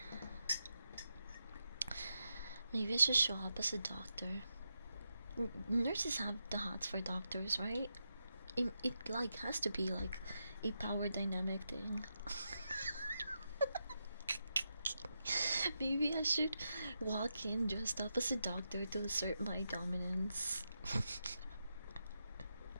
Maybe I should show up as a doctor. Nurses have the hots for doctors, right? It like has to be like a power dynamic thing. Maybe I should walk in dressed up as a doctor to assert my dominance.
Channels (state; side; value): inverted; both; correlation -0.86